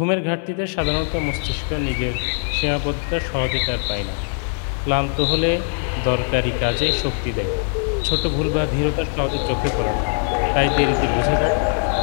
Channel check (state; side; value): silent; right; 59 dB below the other